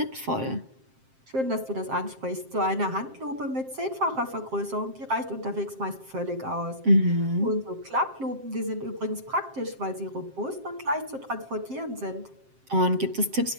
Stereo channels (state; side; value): late; left; 7.6 ms